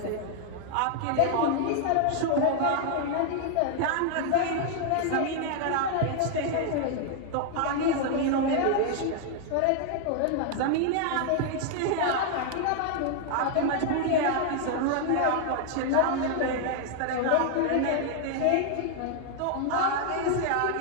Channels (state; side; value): different; both; correlation 0.00